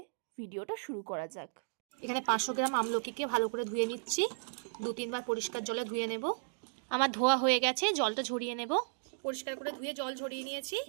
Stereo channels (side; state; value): left; silent; digital silence